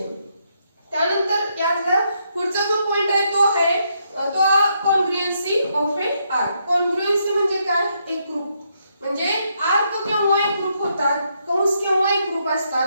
त्यानंतर यातला पुढचा जो पॉइंट आहे तो आहे तो कॉन्ग्रुएन्सी ऑफ ए आर्क. कॉन्ग्रुएन्सी म्हणजे काय, एक ग्रुप, म्हणजे आर्क केव्हा एक ग्रुप होतात, कंस केव्हा एक ग्रुप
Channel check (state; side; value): inverted; both; correlation -0.77